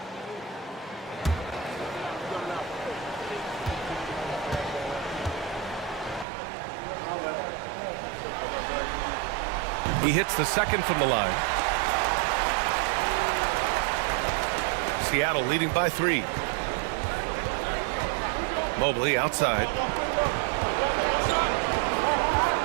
He hits the second from the line. Seattle leading by 3. Mobley outside.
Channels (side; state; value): left; drops out; at 6.2 s